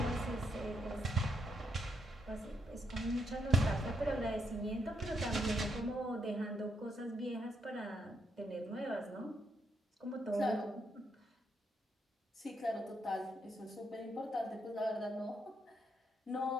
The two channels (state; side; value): normal; both; correlation 0.76